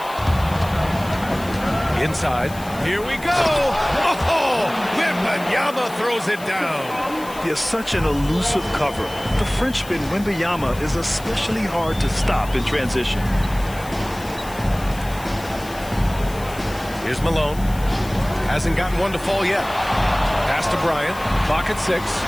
Inside. Here we go. Oh, Wembanyama throws it down. He has such an elusive cover. The Frenchman Wembanyama is especially hard to stop in transition. Here's Malone. Hasn't gotten one to fall yet. Pass to Bryant. Clock at 6.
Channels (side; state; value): left; noise; hiss, 18 dB below the sound